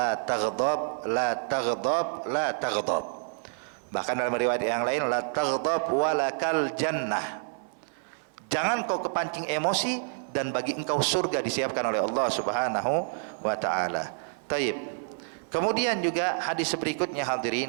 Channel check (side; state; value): left; silent; 59 dB below the other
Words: taghdab, la taghdab, la taghdab. Bahkan dalam riwayat yang lain, la taghdab walakal jannah, jangan kau kepancing emosi dan bagi engkau surga disiapkan oleh Allah Subhanahu wa taala. Taib. Kemudian juga hadis berikutnya